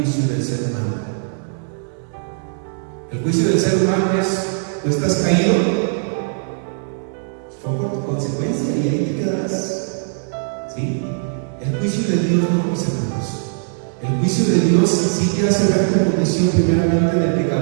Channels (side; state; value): left; silent; 66 dB below the other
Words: del ser humano. El juicio del ser humano es, tú estás caído, fue por tu consecuencia y ahí te quedarás. ¿Sí? El juicio de Dios no, mis hermanos. El juicio de Dios sí te hace ver tu condición primeramente de